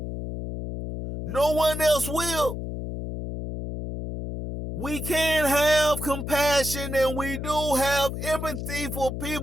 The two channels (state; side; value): noise; left; hum, 6 dB below the sound